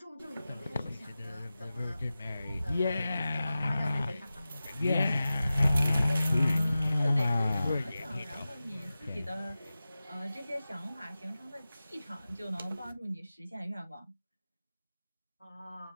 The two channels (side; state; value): both; inverted; correlation -0.95